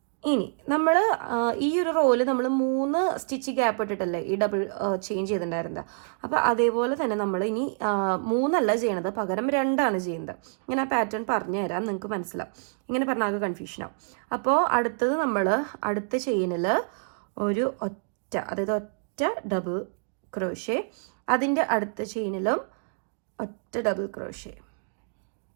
ഇനി നമ്മൾ ഈ ഒരു റോയിൽ നമ്മൾ 3 സ്റ്റിച്ച് ഗ്യാപ്പ് ഇട്ടിട്ടല്ലേ ഈ ഡബിൾ ചെയിൻ ചെയ്തിട്ടുണ്ടായിരുന്നത്. അപ്പോൾ അതേപോലെ തന്നെ നമ്മൾ ഇനി 3 അല്ല ചെയ്യണത്, പകരം 2 ചെയ്യുന്നത്. ഇങ്ങനെ ആ പാറ്റേൺ പറഞ്ഞു തരാം, നിങ്ങൾക്ക് മനസ്സിലാവും. ഇങ്ങനെ പറഞ്ഞാൽ കൺഫ്യൂഷനാവും. അപ്പോൾ അടുത്തത് നമ്മൾ അടുത്ത ചെയിനിൽ ഒരു ഒറ്റ, അതായത് ഒറ്റ ഡബിൾ ക്രോഷേ, അതിൻ്റെ അടുത്ത ചെയിനിലും ഒറ്റ ഡബിൾ ക്രോഷേ.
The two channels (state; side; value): silent; left; digital silence